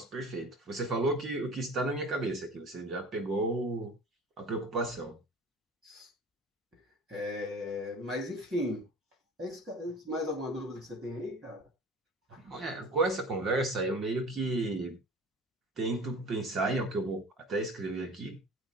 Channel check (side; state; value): both; normal; correlation 0.41